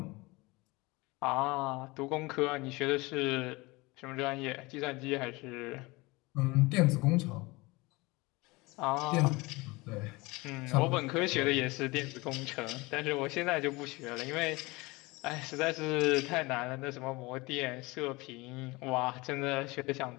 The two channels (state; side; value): quieter; right; 23.4 dB